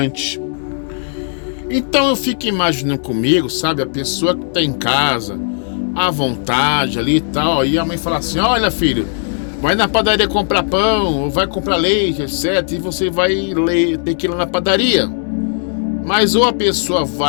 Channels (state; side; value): silent; right; digital silence